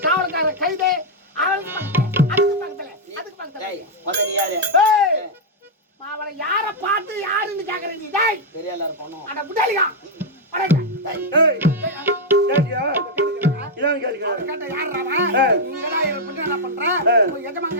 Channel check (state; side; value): normal; both; correlation -0.03